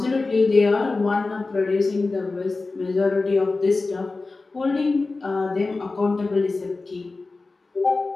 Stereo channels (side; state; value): right; quieter; 3.6 dB